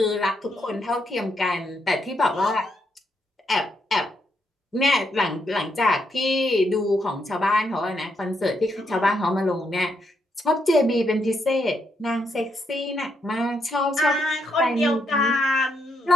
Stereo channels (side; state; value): both; normal; correlation 0.79